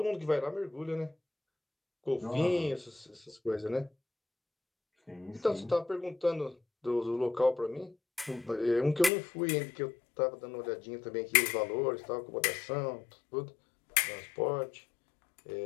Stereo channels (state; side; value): drops out; right; at 9.1 s